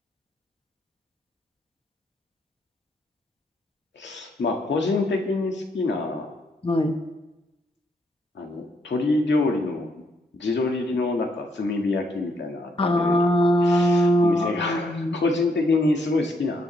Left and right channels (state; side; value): normal; both; correlation 0.73